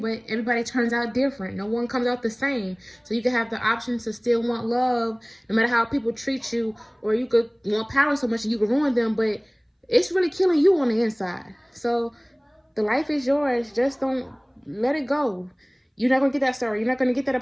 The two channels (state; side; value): identical; both; correlation 1.00